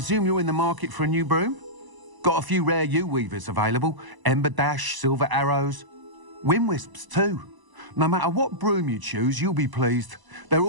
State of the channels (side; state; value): left; late; 1.0 ms